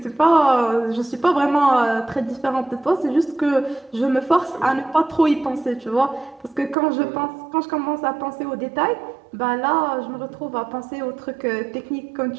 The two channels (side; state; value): left; drops out; at 6.8 s